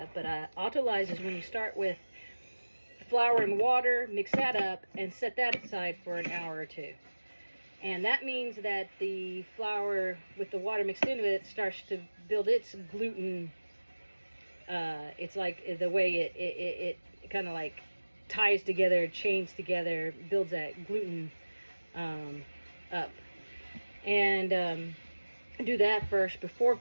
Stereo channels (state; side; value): inverted; both; correlation -1.00